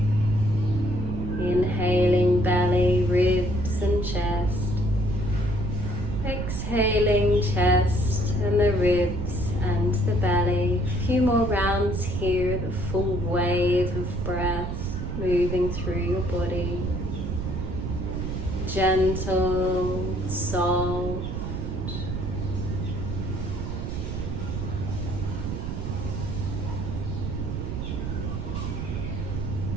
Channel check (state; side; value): noise; right; rumble, 3 dB below the sound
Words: Inhaling belly, ribs, and chest. Exhaling chest and the ribs and the belly. A few more rounds here, the full wave of breath moving through your body. Gentle, soft.